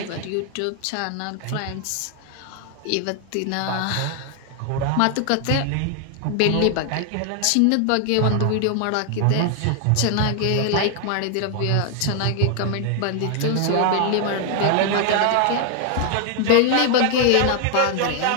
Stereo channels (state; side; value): different; both; correlation 0.00